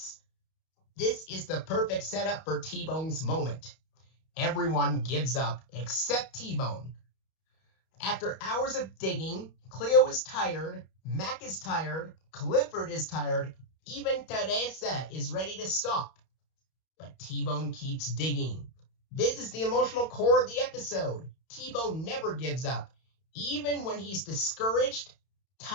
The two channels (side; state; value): right; late; 31 ms